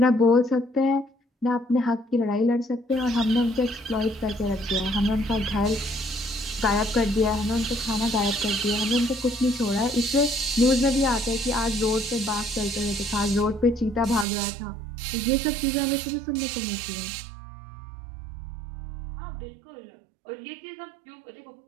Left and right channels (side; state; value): left; drops out; at 14.2 s